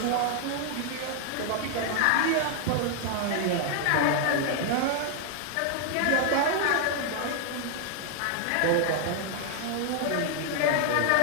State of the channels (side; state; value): both; different; correlation 0.00